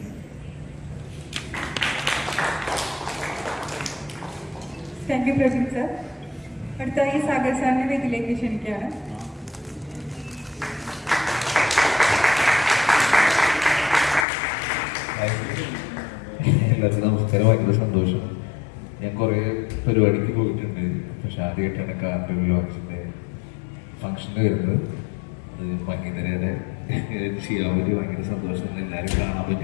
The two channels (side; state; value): right; drops out; at 14.2 s